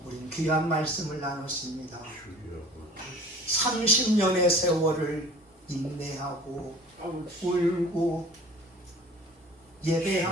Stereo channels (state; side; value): normal; both; correlation 0.45